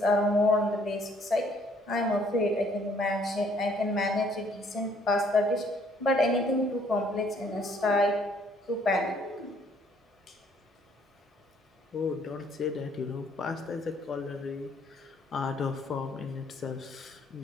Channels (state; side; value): normal; both; correlation 0.63